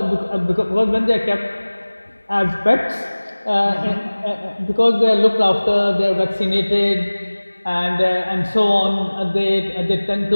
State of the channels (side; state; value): both; inverted; correlation -1.00